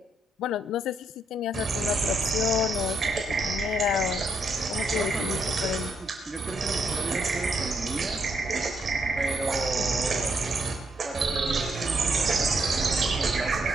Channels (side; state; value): both; normal; correlation 0.76